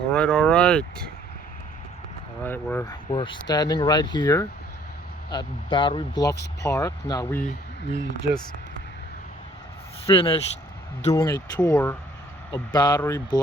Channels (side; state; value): both; normal; correlation 0.59